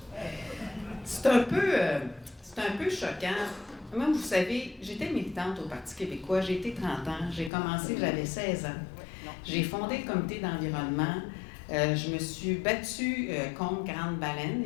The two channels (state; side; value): drops out; right; at 7.5 s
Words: C'est un peu choquant. Moi, vous savez, j'étais militante au Parti québécois, j'ai été 30 ans, j'ai commencé, j'avais 16 ans. J'ai fondé le comité d'environnement. Je me suis battue contre Grande Baleine